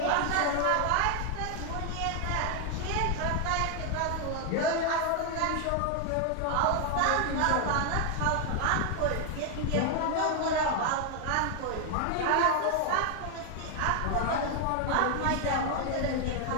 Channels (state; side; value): different; both; correlation 0.00